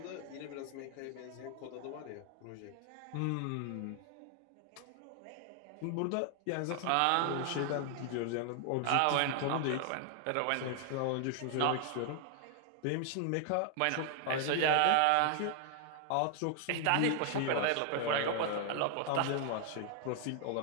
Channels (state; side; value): different; both; correlation 0.00